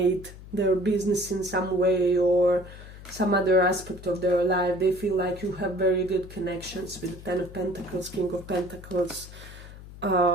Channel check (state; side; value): noise; left; hum, 16 dB below the sound